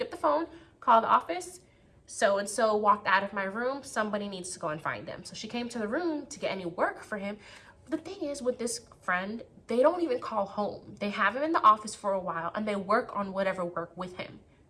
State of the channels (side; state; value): both; identical; correlation 1.00